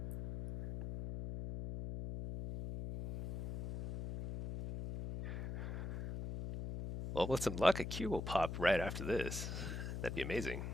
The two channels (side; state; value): left; noise; hum, 5 dB below the sound